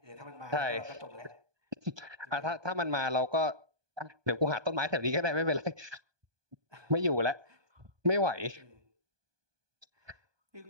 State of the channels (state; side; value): late; left; 1.2 ms